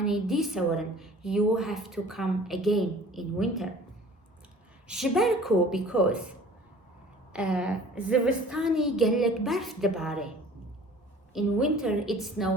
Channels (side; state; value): both; normal; correlation 0.48